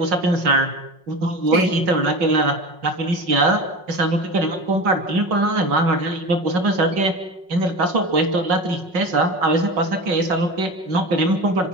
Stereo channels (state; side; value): late; left; 5.5 ms